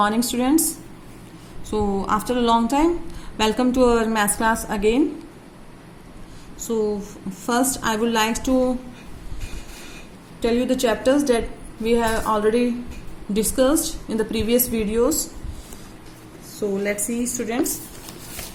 students. So, after a long time, welcome to our maths class again. So, first, I would like to tell you the chapters that we have already discussed in the previous videos. So, let's see, students.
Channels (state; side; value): identical; both; correlation 1.00